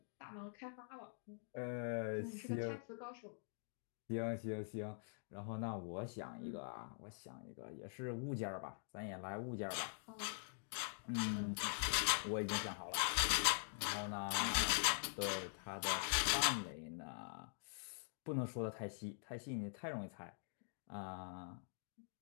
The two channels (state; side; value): silent; right; digital silence